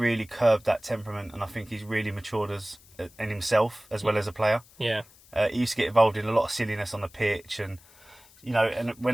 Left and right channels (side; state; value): left; noise; hiss, 26 dB below the sound